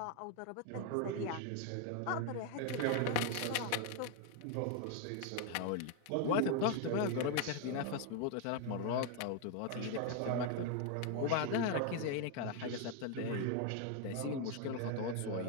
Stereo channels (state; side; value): different; both; correlation 0.01